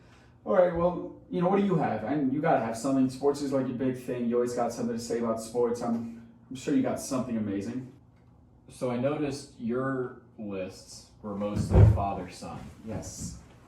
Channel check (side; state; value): both; identical; correlation 1.00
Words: All right, well, what do you have? You got to have something. Sports is like your big thing. You always got something to say about sports. I'm sure you got something amazing. So I noticed your lists were mostly father-son. Yes.